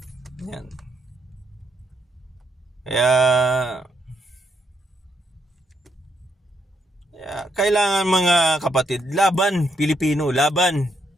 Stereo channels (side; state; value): both; normal; correlation 0.76